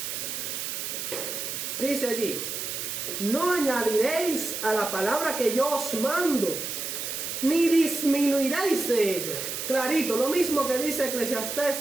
Dice allí: no añadiréis a la palabra que yo os mando, ni disminuiréis de ella. Clarito, lo mismo que dice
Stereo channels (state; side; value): noise; right; hiss, 4 dB below the sound